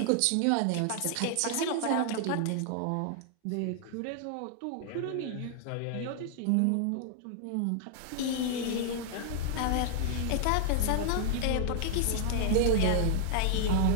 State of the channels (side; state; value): both; different; correlation -0.01